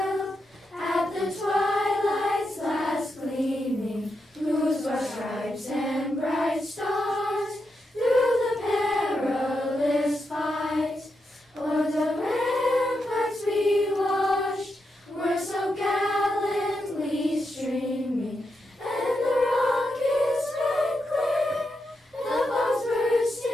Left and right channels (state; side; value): normal; both; correlation 0.85